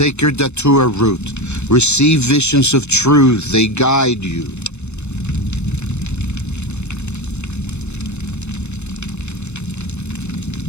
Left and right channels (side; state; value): right; late; 0.82 ms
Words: datura root, receive visions of truth, they guide you.